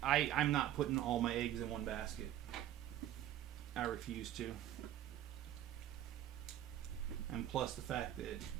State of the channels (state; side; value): quieter; left; 12.0 dB